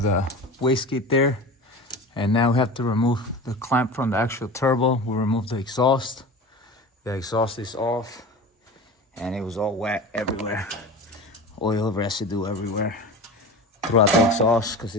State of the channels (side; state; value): both; normal; correlation 0.32